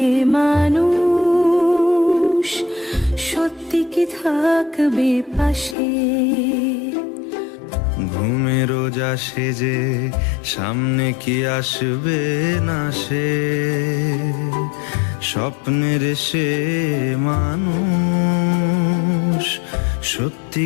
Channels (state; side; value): drops out; right; at 5.8 s